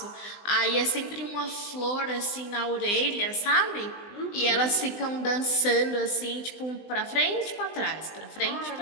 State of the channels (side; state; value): right; late; 20 ms